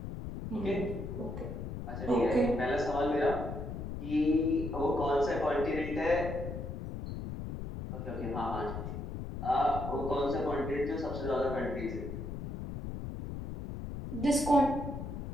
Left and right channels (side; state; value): left; noise; rumble, 6 dB below the sound